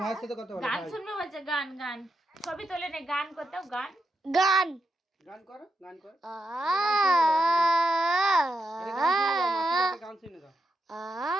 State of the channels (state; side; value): normal; both; correlation 0.85